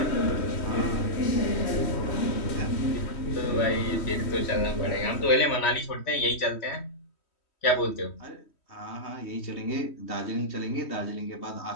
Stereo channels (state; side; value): late; right; 3.1 ms